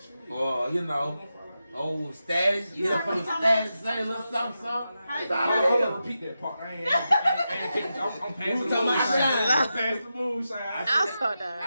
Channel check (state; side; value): inverted; both; correlation -0.89